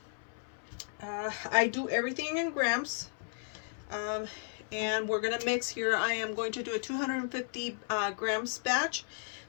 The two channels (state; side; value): silent; right; 55 dB below the other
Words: I do everything in grams. Um, and we're gonna mix here. I am going to do a 250 grams batch.